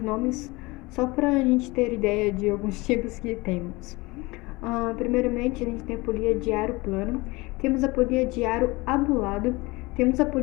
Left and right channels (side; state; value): right; quieter; 23.1 dB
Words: nomes só para a gente ter ideia de alguns tipos que temos. Primeiramente, a gente tem a polia de aro plano, temos a polia de aro abulado, temos a